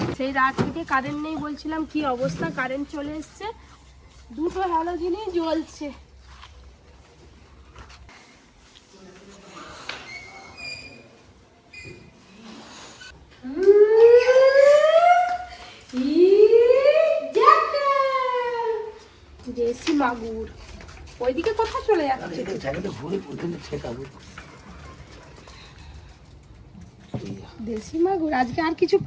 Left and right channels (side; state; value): both; identical; correlation 1.00